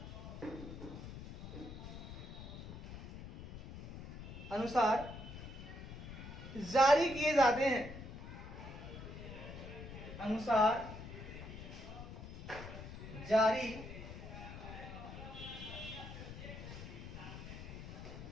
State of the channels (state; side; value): noise; left; rumble, 10 dB below the sound